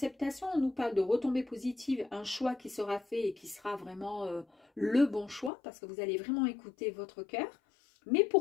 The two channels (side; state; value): right; drops out; at 5.5 s